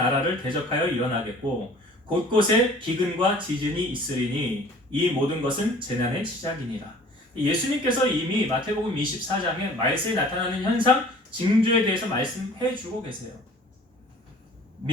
대적하여 일어나겠고 곳곳에 기근과 지진이 있으리니 이 모든 것은 재난의 시작이니라. 예수님께서 이미 마태복음 24장에 말세에 나타나는 현상, 징조에 대해서 말씀해 주고 계세요.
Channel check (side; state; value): both; normal; correlation 0.49